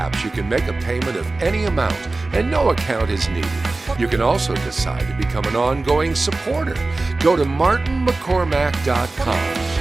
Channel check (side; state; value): left; quieter; 3.3 dB